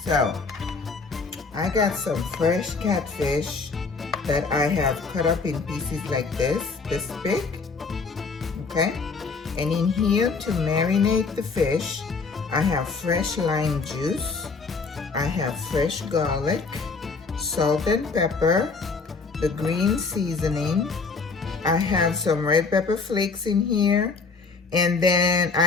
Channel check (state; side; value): quieter; right; 4.5 dB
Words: so I got some fresh catfish that I have cut up in pieces like this big, okay? And in here to marinate the fish, I have fresh lime juice, I have fresh garlic, salt and pepper, the green seasoning, I have some red pepper flakes in here, and then